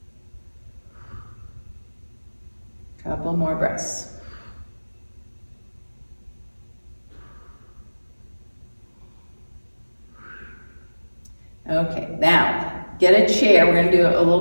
Couple more breaths. Okay, now, get a chair. We're gonna do a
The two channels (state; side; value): inverted; both; correlation -1.00